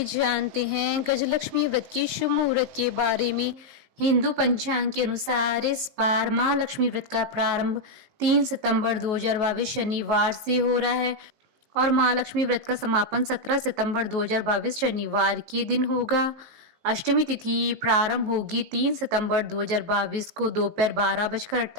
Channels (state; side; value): late; left; 19 ms